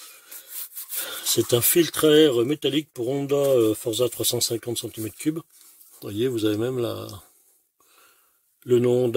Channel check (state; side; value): identical; both; correlation 1.00